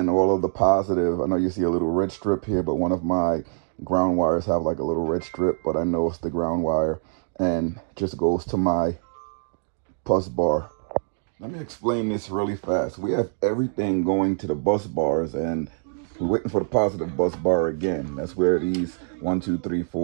all of the positive. I know you see a little red strip here, but one of my ground wires have like a little red strip, but I know it's the ground wire, and it just goes to my bus bar. Let me explain this really fast. We have everything going to the bus bars, and we're waiting for the positive bus bar again. That's where these 1, 2, 3,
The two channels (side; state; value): left; silent; 62 dB below the other